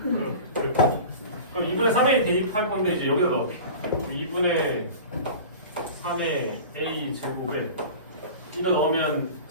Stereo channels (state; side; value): inverted; both; correlation -0.36